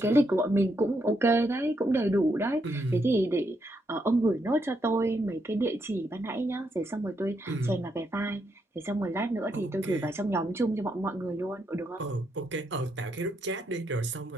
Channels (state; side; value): normal; both; correlation 0.79